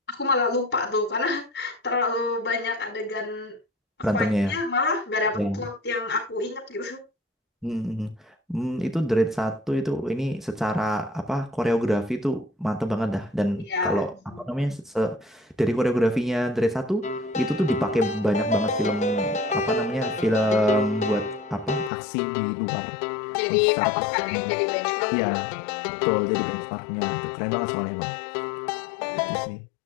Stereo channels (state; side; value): drops out; right; at 21.9 s